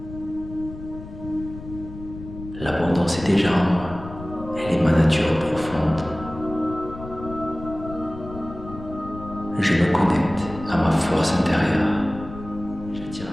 L'abondance est déjà en moi. Elle est ma nature profonde. Je me connecte à ma force intérieure. J'attire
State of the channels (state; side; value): noise; left; rumble, 13 dB below the sound